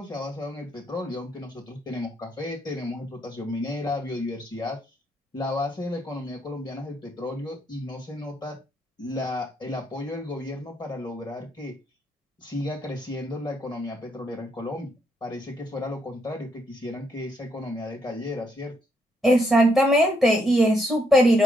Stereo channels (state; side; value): normal; both; correlation 0.74